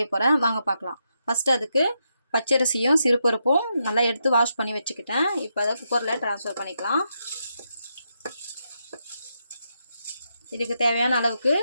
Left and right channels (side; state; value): both; inverted; correlation -0.82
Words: போகிறேன். வாங்க பார்க்கலாம். ஃபஸ்ட்டு அதுக்கு பச்சரிசியும் சிறுபருப்பும் நல்லா எடுத்து வாஷ் பண்ணி வச்சுக்கிட்டேன். இப்போ அதை குக்கரில் ட்ரான்ஸ்ஃபர் பண்ணிக்கலாம். இதுக்கு தேவையான அளவுக்கு